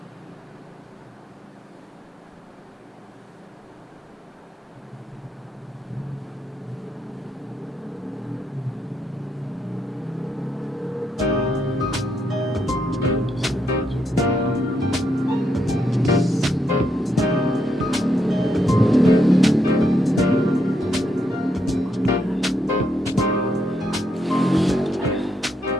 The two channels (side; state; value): both; normal; correlation 0.78